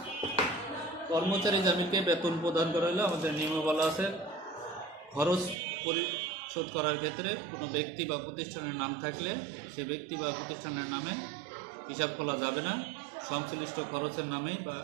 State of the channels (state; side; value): drops out; left; at 5.6 s